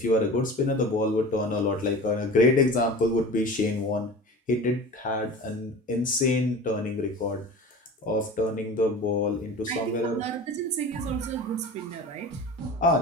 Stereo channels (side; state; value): both; normal; correlation 0.36